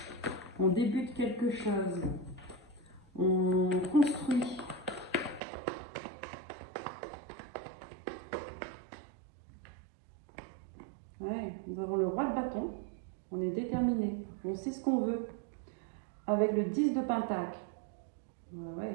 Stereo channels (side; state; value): left; drops out; at 5.4 s